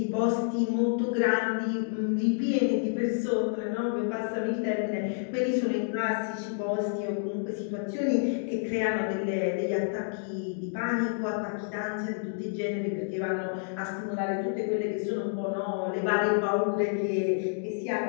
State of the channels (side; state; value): right; silent; digital silence